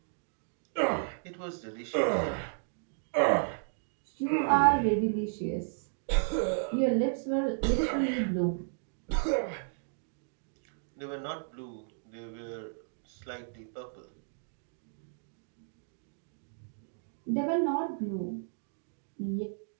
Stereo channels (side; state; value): left; silent; digital silence